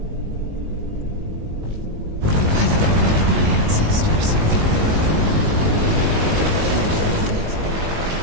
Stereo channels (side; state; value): left; late; 19 ms